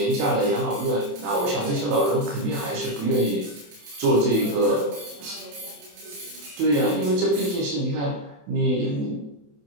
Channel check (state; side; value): late; left; 28 ms